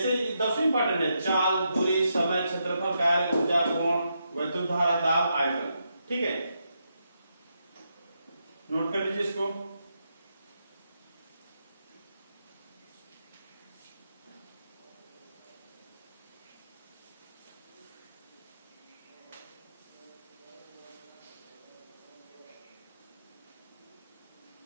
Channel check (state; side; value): inverted; both; correlation -0.82